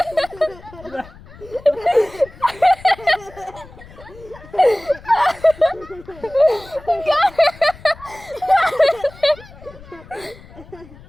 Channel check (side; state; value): left; noise; rumble, 20 dB below the sound